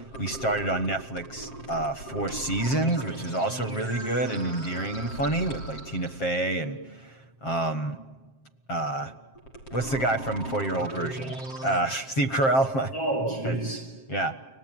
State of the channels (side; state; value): right; late; 7.5 ms